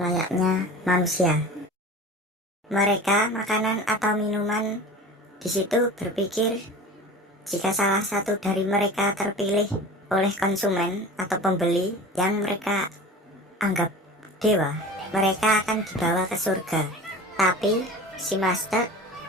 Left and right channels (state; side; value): normal; both; correlation 0.36